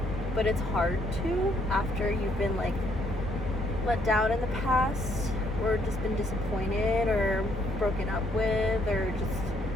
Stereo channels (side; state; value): both; normal; correlation 0.69